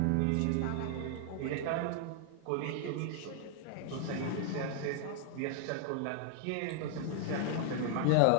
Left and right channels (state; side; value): different; both; correlation 0.00